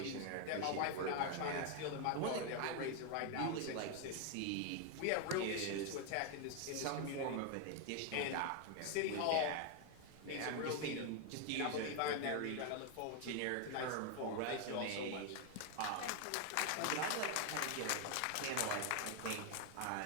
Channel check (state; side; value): different; both; correlation 0.01